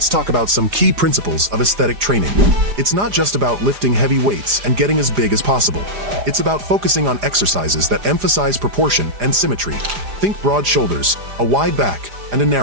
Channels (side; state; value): left; late; 4.9 ms